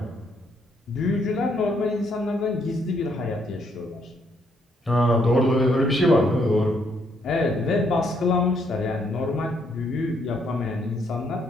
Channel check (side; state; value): both; normal; correlation 0.71